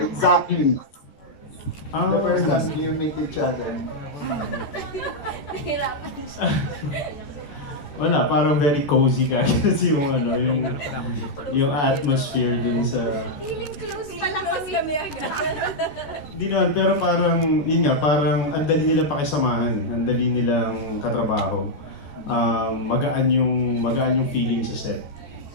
exactly? The first time you meet each other. Wala, parang very cozy ka kasi yung atmosphere dun sa... Feeling close pala kami agad. Hindi naman, pero parang, yun nga, parang ang dali nilang pakisamahan, ang dali nilang katrabaho. Magaan yung feeling sa set.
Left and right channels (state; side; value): late; right; 14 ms